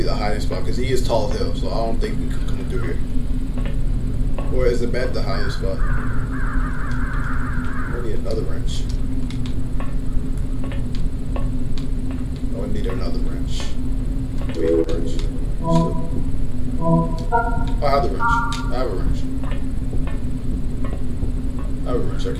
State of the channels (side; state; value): both; identical; correlation 1.00